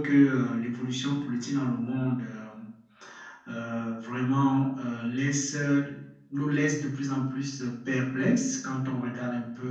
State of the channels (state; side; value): identical; both; correlation 1.00